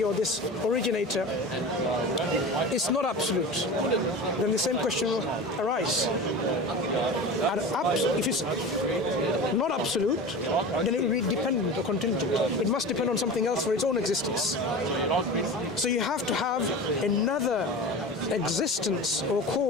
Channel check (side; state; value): both; normal; correlation 0.31